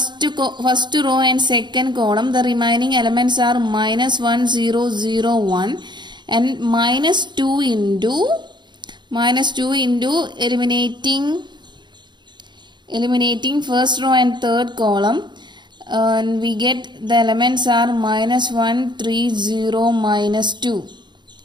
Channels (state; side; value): late; left; 0.22 ms